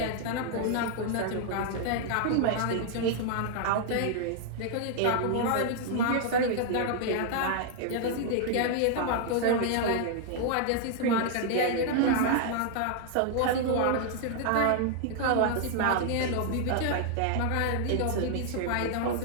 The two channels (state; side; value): different; both; correlation -0.01